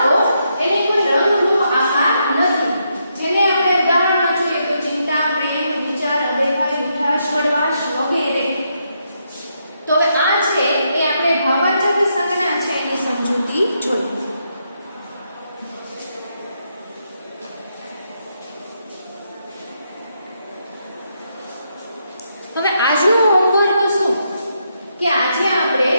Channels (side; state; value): both; inverted; correlation -0.79